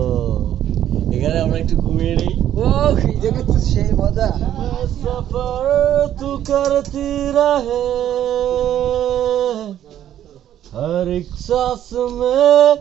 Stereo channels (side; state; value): left; quieter; 11.2 dB